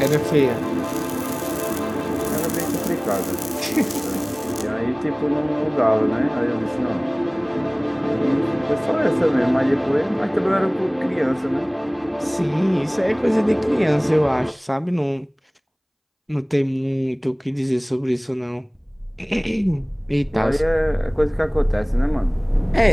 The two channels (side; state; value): both; identical; correlation 1.00